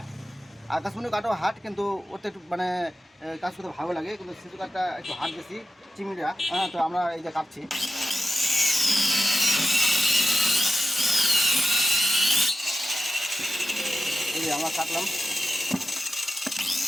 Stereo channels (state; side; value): normal; both; correlation 0.92